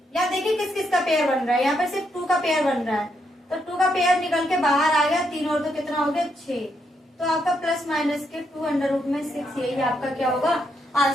यहाँ देखिए किस किस का पेयर बन रहा है। यहाँ पे सिर्फ 2 का पेयर बन रहा है तो 2 का पेयर निकल के बाहर आ गया। 3 और 2 कितना हो गया? 6। तो आपका प्लस माइनस के 2√6 यही आपका क्या होगा?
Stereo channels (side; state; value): both; normal; correlation 0.78